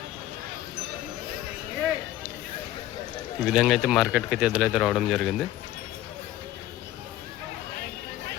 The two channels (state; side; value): quieter; right; 14.0 dB